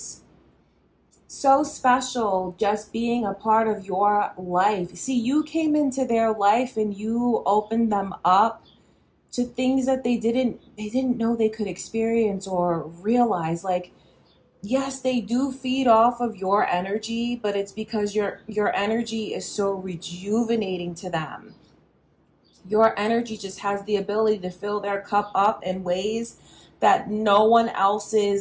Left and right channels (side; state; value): both; identical; correlation 1.00